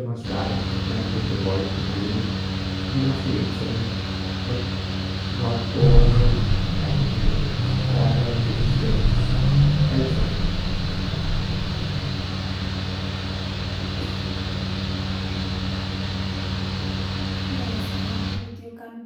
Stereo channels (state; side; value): identical; both; correlation 1.00